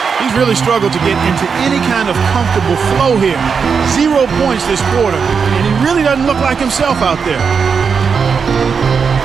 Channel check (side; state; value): left; quieter; 5.9 dB